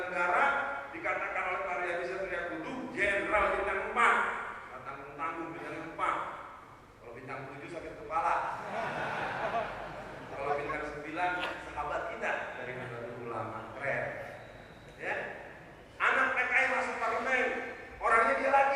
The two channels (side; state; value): both; identical; correlation 1.00